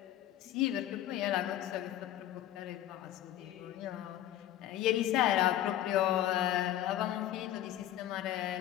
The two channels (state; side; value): quieter; right; 12.8 dB